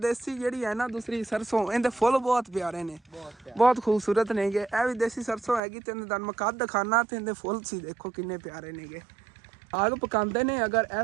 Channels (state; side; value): drops out; left; at 5.6 s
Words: ਜਿਹੜੀ ਹੈ ਨਾ ਦੂਸਰੀ ਸਰਸੋਂ ਇਹਦੇ ਫੁੱਲ ਬਹੁਤ ਪਿਆਰੇ ਨੇ ਬਹੁਤ ਖੂਬਸੂਰਤ ਨੇਗੇ ਇਹ ਵੀ ਦੇਸੀ ਸਰਸੋਂ ਹੈਗੀ ਤੇ ਤੁਹਾਨੂੰ ਮੈਂ ਕੱਦ ਦਿਖਾਣਾ ਤੇ ਇਹਦੇ ਫੁੱਲ ਸੀ ਦੇਖੋ ਕਿੰਨੇ ਪਿਆਰੇ ਨੇਗੇ ਸਾਗ ਪਕਾਉਂਦੇ ਨੇ ਅਗਰ